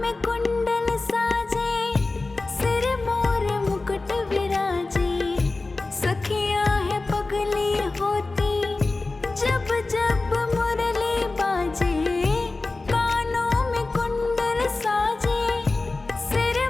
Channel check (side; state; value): right; quieter; 3.4 dB